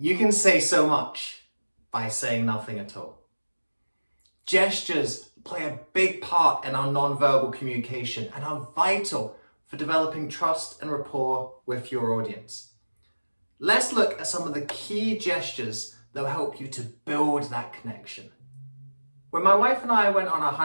can say so much by saying nothing at all. Gestures play a big part in our non-verbal communication and are vital for developing trust and rapport with your audience. Let's look at some of the key gestures that will help you to build that connection. When my wife and I went on our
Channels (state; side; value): inverted; both; correlation -1.00